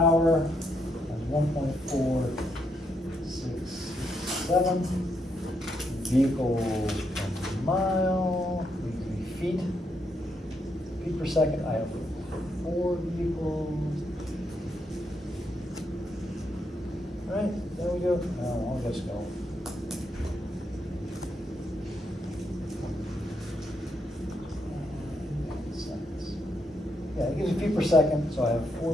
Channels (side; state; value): both; normal; correlation 0.78